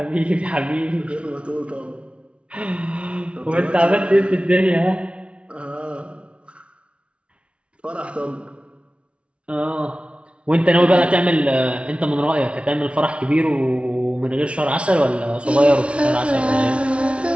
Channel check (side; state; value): left; late; 0.060 ms